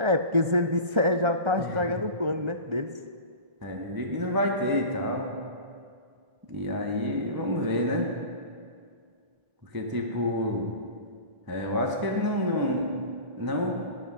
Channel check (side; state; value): left; late; 1.3 ms